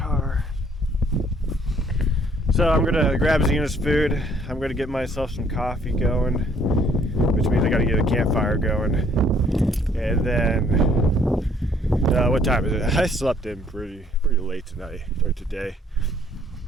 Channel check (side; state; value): both; normal; correlation 0.63